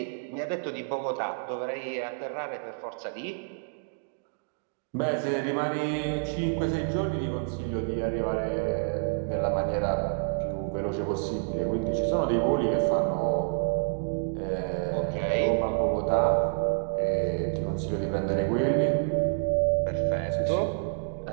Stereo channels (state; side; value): silent; left; digital silence